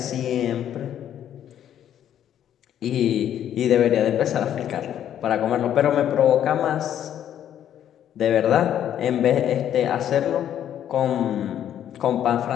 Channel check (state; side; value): quieter; right; 10.4 dB